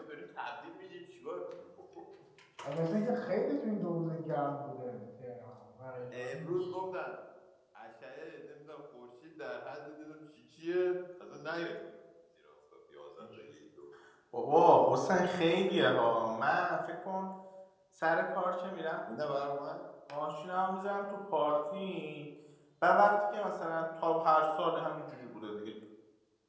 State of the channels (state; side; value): identical; both; correlation 1.00